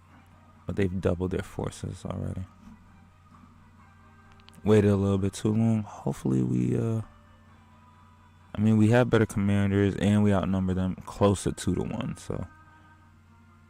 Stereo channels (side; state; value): both; identical; correlation 1.00